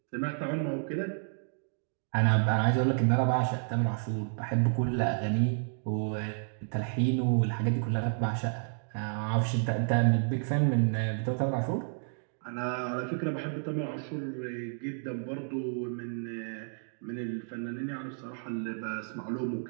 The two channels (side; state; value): left; silent; digital silence